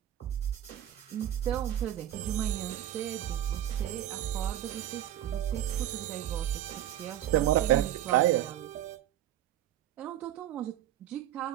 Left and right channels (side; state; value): left; quieter; 12.2 dB